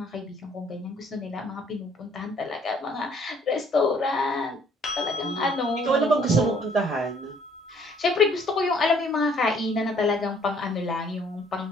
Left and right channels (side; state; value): both; normal; correlation 0.61